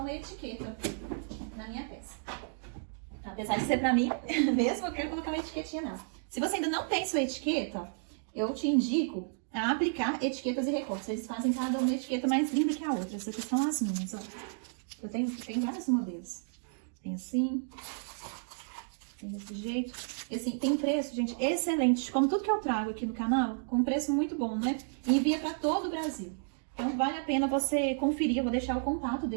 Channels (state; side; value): silent; left; digital silence